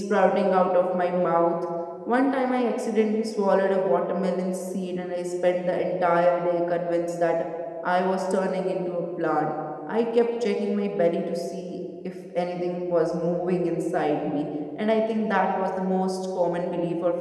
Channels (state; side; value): identical; both; correlation 1.00